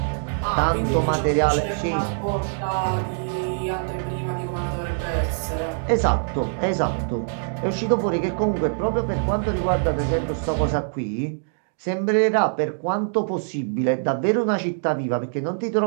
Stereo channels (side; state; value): left; silent; digital silence